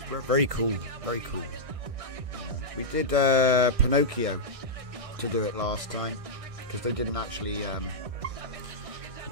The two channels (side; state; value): left; late; 1.6 ms